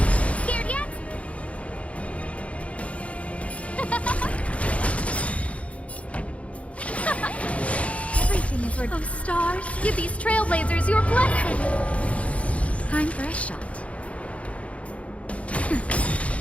Scared yet? Everything is worth. Oh, stars, give these trailblazers your blessing. Time for a shot.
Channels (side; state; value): right; late; 0.064 ms